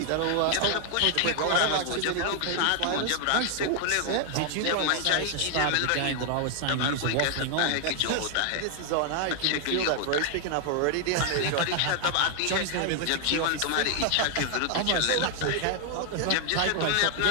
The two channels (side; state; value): both; different; correlation 0.00